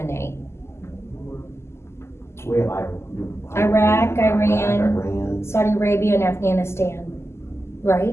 We have Iraq, Iran. Iran. Saudi Arabia and Afghanistan,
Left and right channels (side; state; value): right; late; 0.13 ms